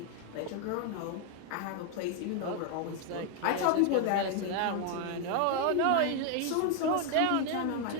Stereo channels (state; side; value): different; both; correlation 0.01